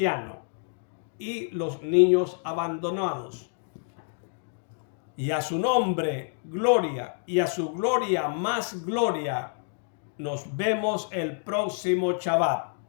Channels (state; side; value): silent; right; digital silence